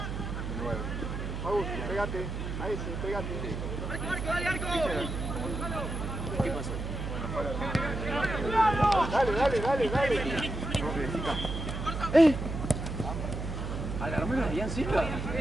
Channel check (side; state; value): right; noise; hum, 4 dB below the sound